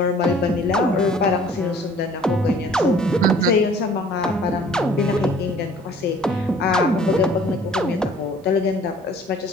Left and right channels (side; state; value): both; normal; correlation 0.53